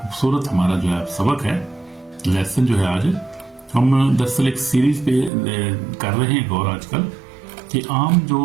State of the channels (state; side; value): drops out; left; at 5.3 s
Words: हमारा जो है सबक है, लेसन जो है आज हम दरअसल एक सीरीज पे कर रहे हैं गौर आजकल कि आम